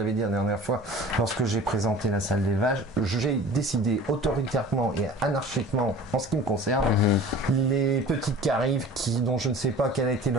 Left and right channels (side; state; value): both; normal; correlation 0.43